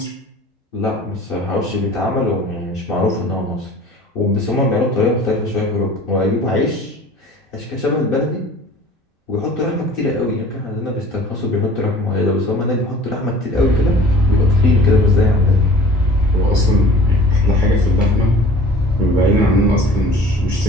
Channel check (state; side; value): normal; both; correlation 0.46